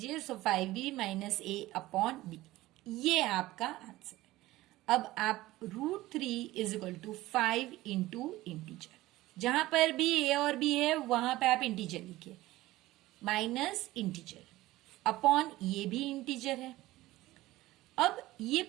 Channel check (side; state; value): left; quieter; 17.4 dB